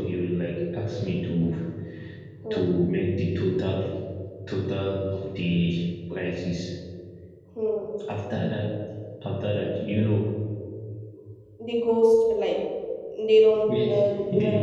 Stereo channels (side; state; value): both; identical; correlation 1.00